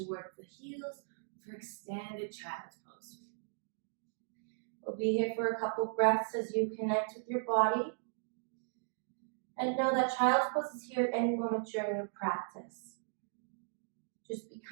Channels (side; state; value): left; silent; digital silence